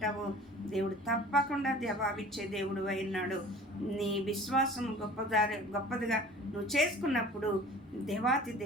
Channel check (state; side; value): normal; both; correlation 0.44